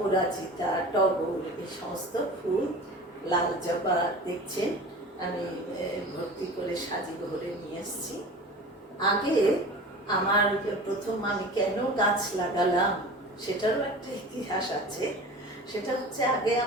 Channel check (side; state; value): both; normal; correlation 0.37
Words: টগর, এই সমস্ত ফুল, লাল জবা দেখছেন আমি ভর্তি করে সাজি ভরে নিয়ে এসেছি। আগে আমার প্রথম আমি কেন গাছ লাগালাম সেটারও একটা ইতিহাস আছে। সেটা হচ্ছে, আগে